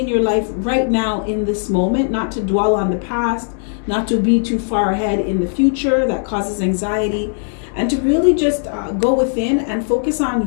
your life right now in this moment, not to dwell on the past, not to be too far ahead in the future. That causes anxiety. And to really just go within and focus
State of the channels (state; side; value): silent; right; digital silence